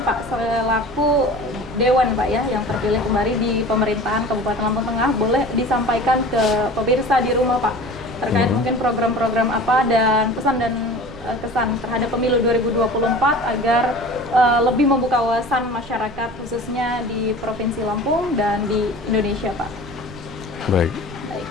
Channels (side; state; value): right; noise; rumble, 17 dB below the sound